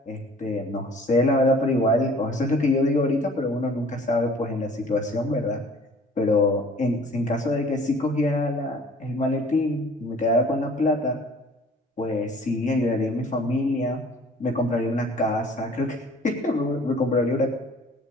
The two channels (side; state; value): both; normal; correlation 0.51